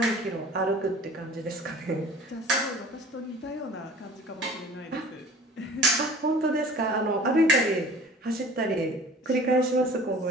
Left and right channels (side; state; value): both; normal; correlation 0.45